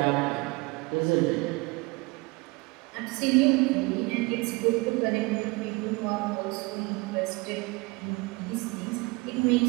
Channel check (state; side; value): quieter; left; 25.8 dB